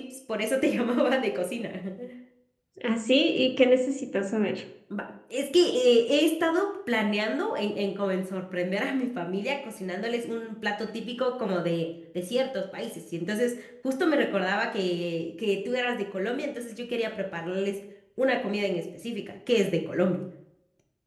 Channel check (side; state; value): both; identical; correlation 1.00